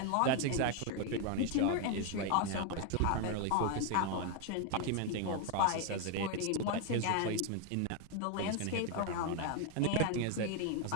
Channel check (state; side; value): different; both; correlation 0.01